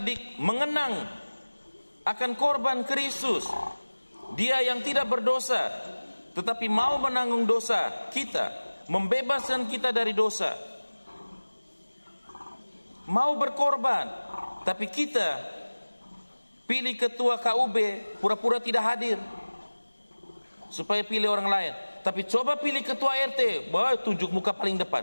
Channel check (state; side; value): inverted; both; correlation -1.00